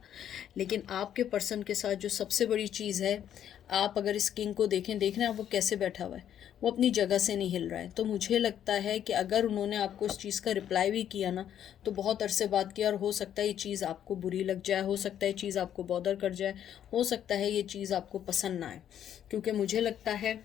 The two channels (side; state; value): right; quieter; 10.1 dB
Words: लेकिन आपके पर्सन के साथ जो सबसे बड़ी चीज़ है, आप अगर इस किंग को देखें, देख रहे हैं आप वो कैसे बैठा हुआ है, वो अपनी जगह से नहीं हिल रहा है। तो मुझे लगता है कि अगर उन्होंने आपको इस चीज़ का रिप्लाई भी किया ना तो बहुत अरसे बाद किया, और हो सकता है ये चीज़ आपको बुरी लग जाए, हो सकता है ये चीज़ आपको बॉदर कर जाए, हो सकता है ये चीज़ आपको पसंद ना आए। क्योंकि मुझे लगता है